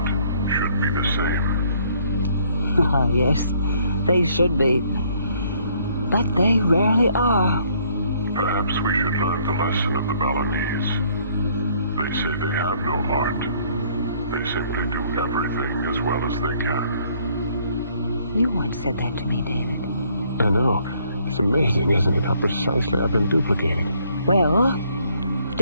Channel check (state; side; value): inverted; both; correlation -0.64